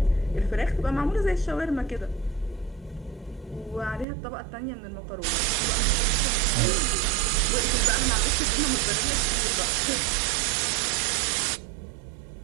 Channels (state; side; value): drops out; left; at 4.0 s